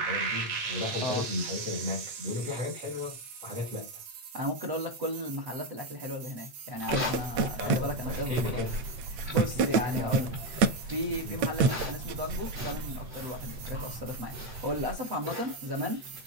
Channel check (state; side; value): late; left; 8.6 ms